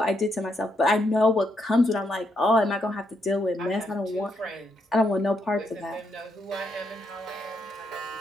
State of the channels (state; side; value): normal; both; correlation 0.78